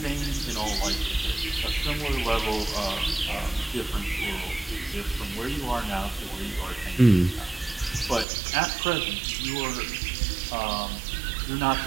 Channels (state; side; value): drops out; left; at 8.2 s